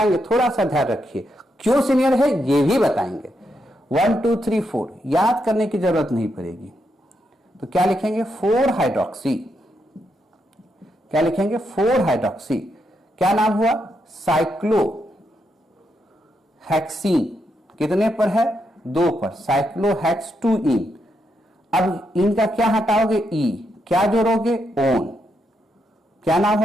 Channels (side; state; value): both; normal; correlation 0.81